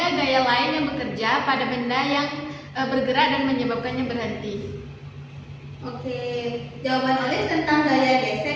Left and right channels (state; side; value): identical; both; correlation 1.00